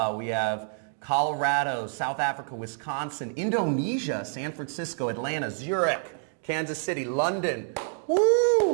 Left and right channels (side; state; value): left; silent; digital silence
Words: We have Colorado, South Africa, Wisconsin, Indonesia, San Francisco, Atlanta, Zurich, Kansas City, London,